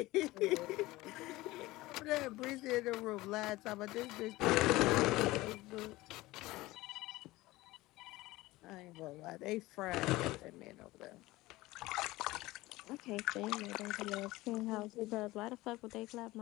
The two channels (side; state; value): right; quieter; 19.1 dB